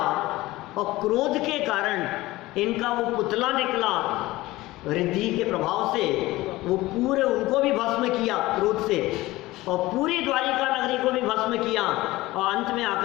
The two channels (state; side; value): quieter; right; 18.6 dB